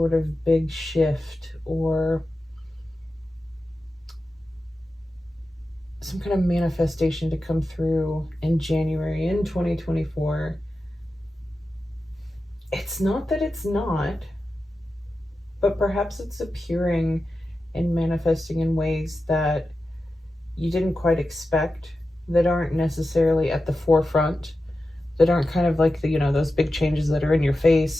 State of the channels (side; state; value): both; normal; correlation 0.92